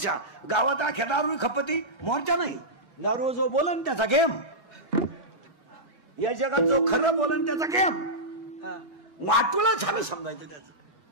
गावात अख्या दारू खपती मोर्चा नाही. दारू जो बोलन त्याचा गेम, या जगात जो खरं बोलन त्याचा गेम. वाटूला झालं समजायचं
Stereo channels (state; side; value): late; right; 1.6 ms